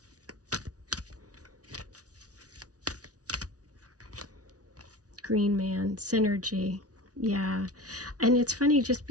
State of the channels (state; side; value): late; left; 0.68 ms